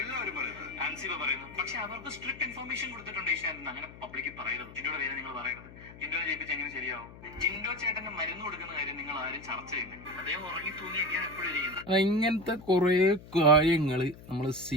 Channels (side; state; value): left; noise; hum, 17 dB below the sound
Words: പക്ഷെ അവർക്ക് സ്ട്രിക്ട് ഇൻഫർമേഷൻ കൊടുത്തിട്ടുണ്ട് ഏഷ്യാനെന്ന്. അങ്ങനെ പബ്ലിക്കിൽ പറയരുത്. ജിൻഡോയുടെ പേര് നിങ്ങൾ പറയരുത്. ജിൻഡോനെ ജയിപ്പിച്ച് എങ്ങനെ ശരിയാവും? ജിൻഡോ ചേട്ടന് മരുന്ന് കൊടുക്കുന്ന കാര്യം നിങ്ങൾ ആരും ചർച്ച ചെയ്യുന്നില്ല. അദ്ദേഹം ഉറങ്ങി തൂങ്ങിയൊക്കെയാണ് എപ്പോഴും ഇരിക്കുന്നത്. ഇങ്ങനത്തെ കുറെ കാര്യങ്ങൾ നമ്മൾ